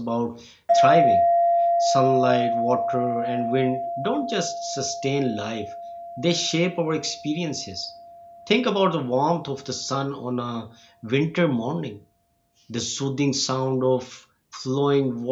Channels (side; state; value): both; identical; correlation 1.00